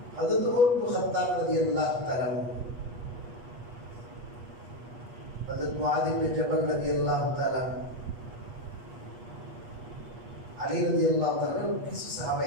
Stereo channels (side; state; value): left; late; 8.3 ms